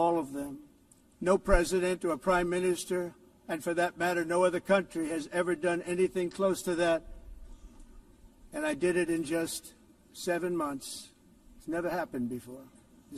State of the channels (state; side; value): identical; both; correlation 1.00